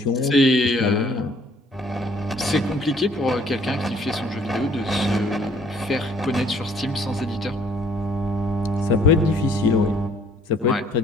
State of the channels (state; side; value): normal; both; correlation 0.60